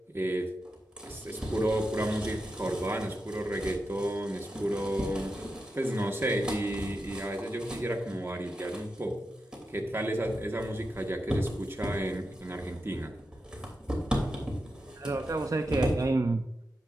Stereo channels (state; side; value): normal; both; correlation 0.88